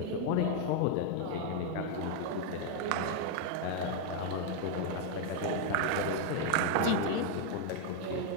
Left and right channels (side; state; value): both; different; correlation 0.00